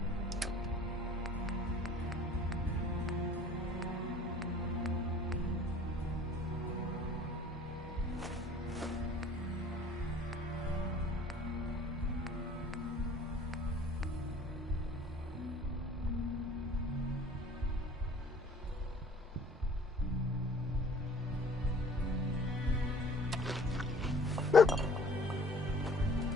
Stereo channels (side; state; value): both; normal; correlation 0.51